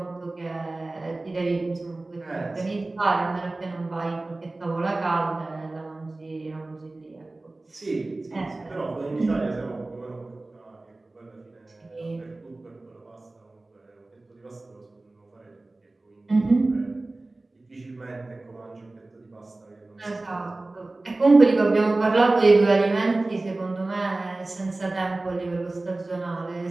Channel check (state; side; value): quieter; left; 3.0 dB